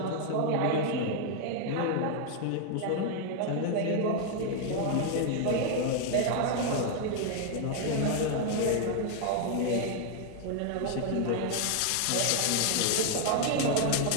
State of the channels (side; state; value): both; different; correlation 0.00